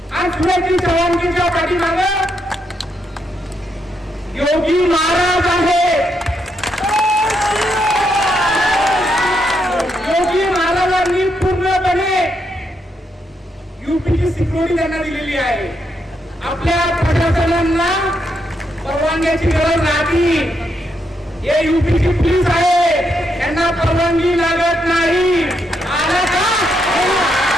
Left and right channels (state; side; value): normal; both; correlation 0.79